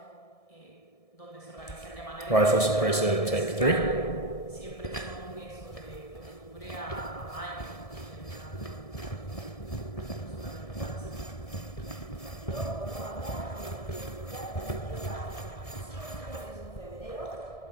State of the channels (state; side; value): late; right; 1.7 ms